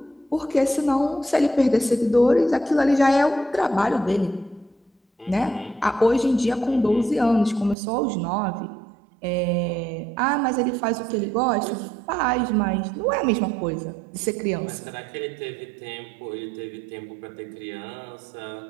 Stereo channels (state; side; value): drops out; left; at 7.8 s